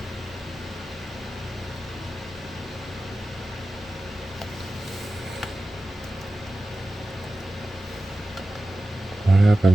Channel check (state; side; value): normal; both; correlation 0.94